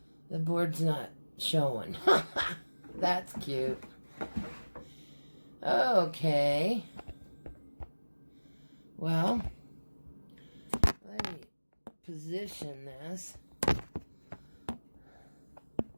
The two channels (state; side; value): inverted; both; correlation -1.00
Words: The board's not showing. That's cute. Okay. Well, let me position this.